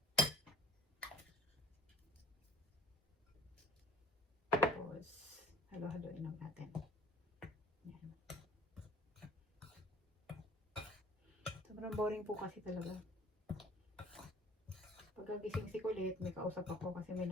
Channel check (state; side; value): normal; both; correlation 0.47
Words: Tapos, halo-haloin lang natin. Yan. Sobrang boring po kasi talaga. Pagkagising si Kulit, may kausap ako kasi may